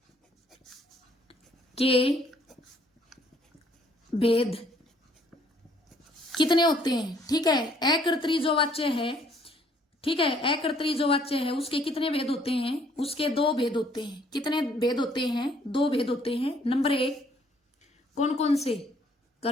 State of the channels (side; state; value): both; normal; correlation 0.63